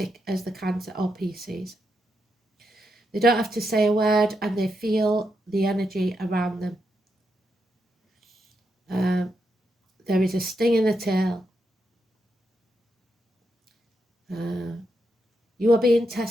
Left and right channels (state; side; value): normal; both; correlation 0.83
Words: as the Cancer or Pisces. They don't have to say a word and they feel the energy around them. There is a sting in the tail. You are being